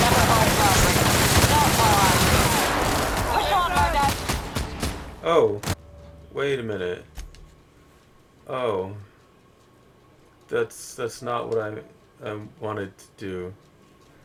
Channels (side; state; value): both; identical; correlation 1.00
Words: hold robbery. Not while I'm here. Push on, Murdoch. Oh, wait a minute. Oh, that's not what I wanted to do.